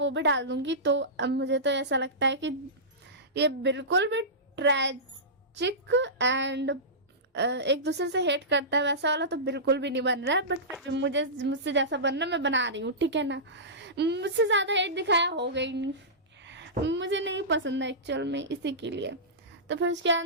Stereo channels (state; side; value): normal; both; correlation -0.18